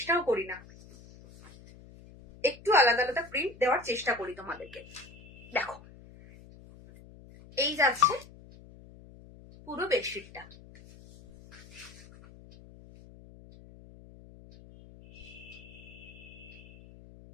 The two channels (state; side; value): noise; left; hum, 20 dB below the sound